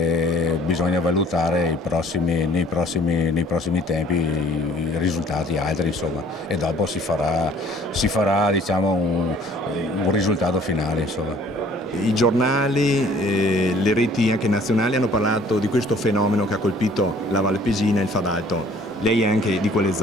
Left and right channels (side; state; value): both; normal; correlation 0.55